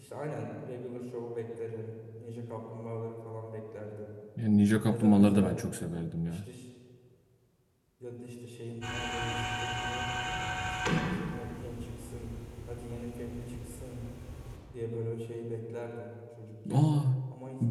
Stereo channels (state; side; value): identical; both; correlation 1.00